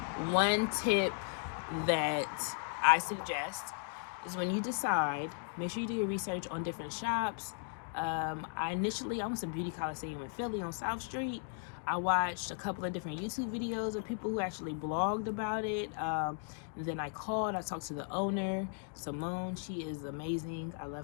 one tip that I suggest is when you decide, make sure you do your research on different shops. I went to Beauty Coliseum in Philly on South Street. I watched a couple of different YouTube videos of people who actually blogged about it. And then I talked to the owner, Simone. She is amazing. I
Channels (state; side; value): silent; right; 54 dB below the other